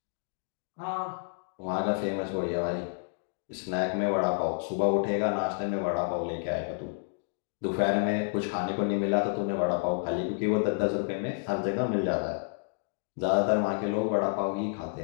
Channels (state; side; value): silent; right; digital silence